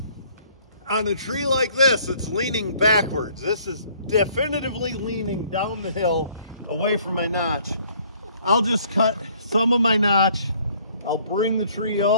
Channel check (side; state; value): both; inverted; correlation -0.60